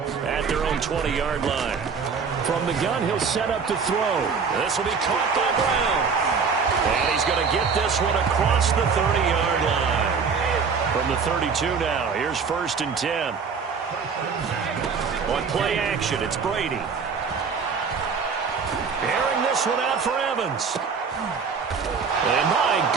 at their own 20-yard line. From the gun, he'll set up to throw. This will be caught by Brown. And he's going to get this one across the 30-yard line. From the 32 now, here's 1st and 10. On play action, it's Brady. Airing this one out for Evans. And my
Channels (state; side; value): quieter; left; 5.6 dB